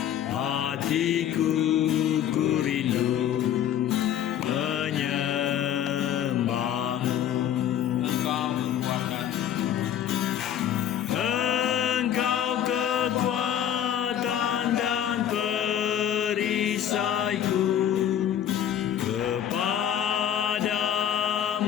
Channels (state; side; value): quieter; right; 10.0 dB